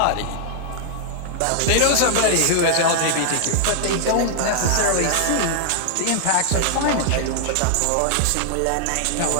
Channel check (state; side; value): different; both; correlation -0.01